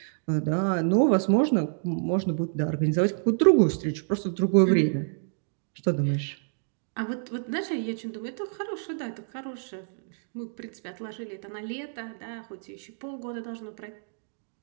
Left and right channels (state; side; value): silent; left; digital silence